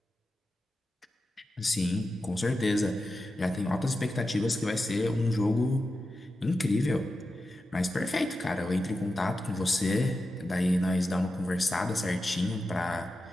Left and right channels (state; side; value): normal; both; correlation 0.91